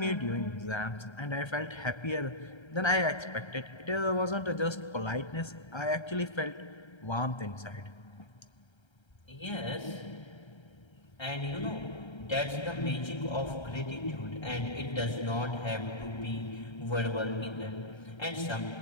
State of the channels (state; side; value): late; right; 1.3 ms